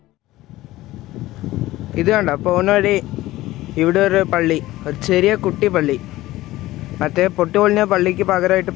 ഇത് കണ്ടോ പോകുന്ന വഴി ഇവിടെ ഒരു പള്ളി, ഒരു ചെറിയ കുട്ടി പള്ളി. മറ്റേ പൊട്ടിപ്പൊളിഞ്ഞ പള്ളിക്ക് പകരമായിട്ട്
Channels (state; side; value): quieter; right; 16.9 dB